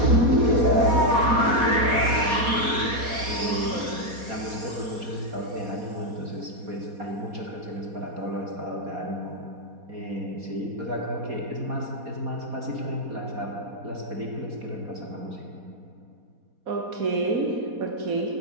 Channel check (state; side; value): late; left; 4.2 ms